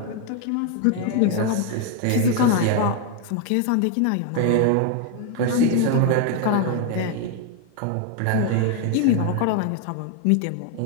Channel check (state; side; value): different; both; correlation 0.01